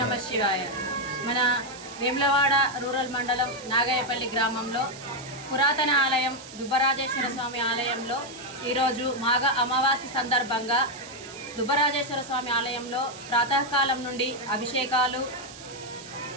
నమ శివాయ. మన వేములవాడ రూరల్ మండలం నాగాయపల్లి గ్రామంలో పురాతన ఆలయం దుబ్బరాజేశ్వర స్వామి ఆలయంలో ఈరోజు మాఘ అమావాస్య సందర్భంగా దుబ్బరాజేశ్వర స్వామి ఆలయంలో ప్రాతకాలం నుండి అభిషేకాలు,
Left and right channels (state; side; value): noise; right; hiss, 16 dB below the sound